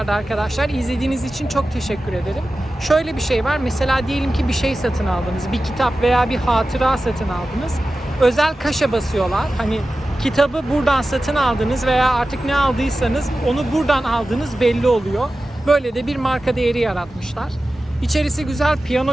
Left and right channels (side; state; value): both; normal; correlation 0.94